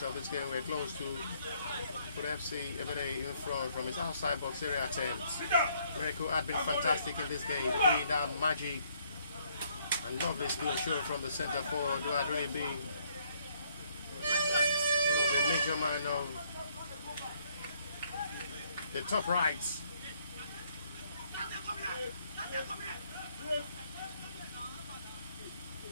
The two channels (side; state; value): both; inverted; correlation -0.68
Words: of this game were close to put FC Ebedei in front from his outside box area attempts. Miracle had been fantastic in this game, doing that magic and lovely skill show from the centre forward, who had really been one of the major man of the top rights.